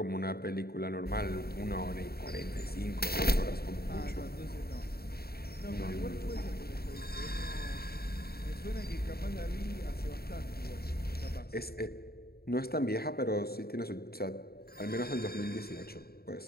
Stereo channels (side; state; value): right; late; 0.45 ms